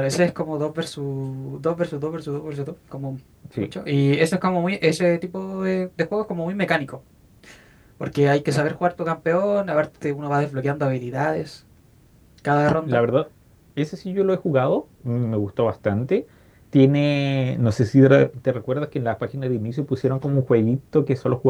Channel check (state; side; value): identical; both; correlation 1.00